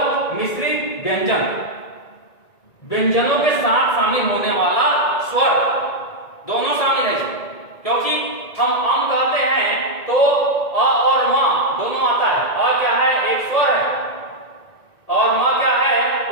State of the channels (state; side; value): late; right; 1.9 ms